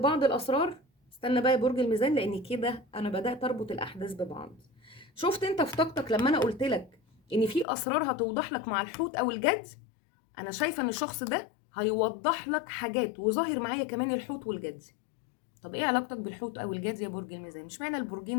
الاسرار. استنى بقى يا برج الميزان، لان كده انا بدأت اربط الاحداث ببعض. شفت انت في طاقتك لما انا قلت لك ان في اسرار هتوضح لك مع الحوت او الجد؟ انا شايفة ان الشخص ده هيوضح لك حاجات، وظاهر معايا كمان الحوت والجد. طب ايه علاقتك بالحوت او الجد يا برج الميزان؟ مش معنى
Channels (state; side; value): drops out; right; at 7.7 s